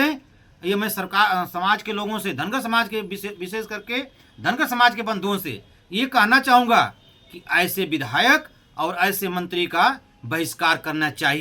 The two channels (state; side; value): identical; both; correlation 1.00